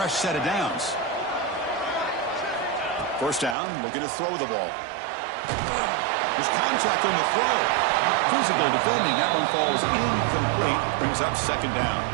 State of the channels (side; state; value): left; drops out; at 3.6 s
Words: set of downs. First down, looking to throw the ball. There's contact on the throw. Physical defending. That one falls incomplete. Brings up second down.